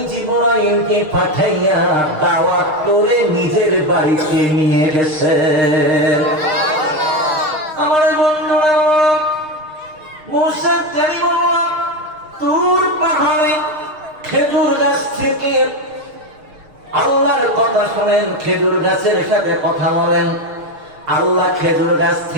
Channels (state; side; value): late; left; 6.5 ms